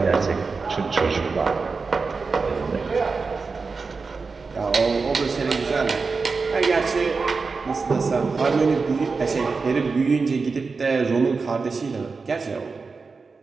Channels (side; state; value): left; quieter; 4.5 dB